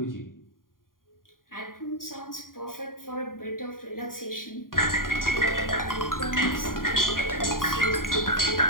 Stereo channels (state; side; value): late; right; 0.91 ms